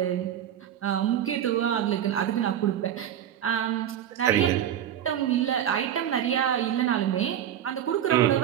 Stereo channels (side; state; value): left; quieter; 10.4 dB